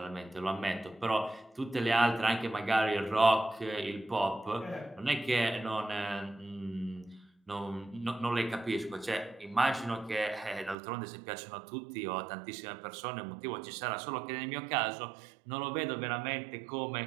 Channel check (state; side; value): drops out; left; at 10.8 s